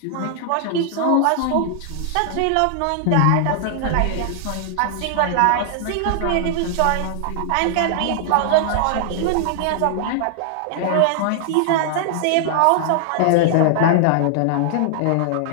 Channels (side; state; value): both; different; correlation 0.00